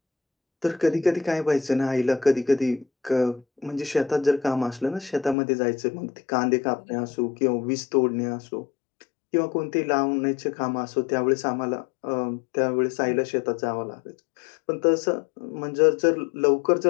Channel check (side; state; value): right; drops out; at 5.4 s